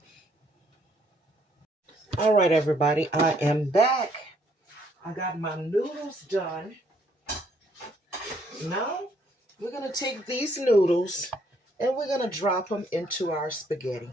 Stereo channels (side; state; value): both; normal; correlation 0.67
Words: All right, everybody, I am back. I got my noodles done. Now, we're going to take these noodles and we're going to drop them into our spaghetti